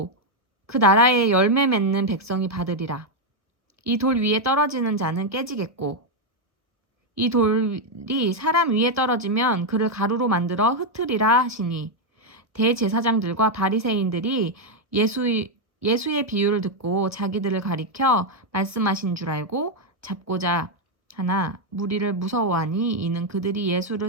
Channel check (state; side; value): late; left; 1.1 ms